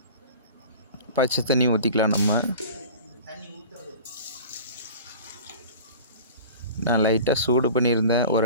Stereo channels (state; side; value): inverted; both; correlation -0.39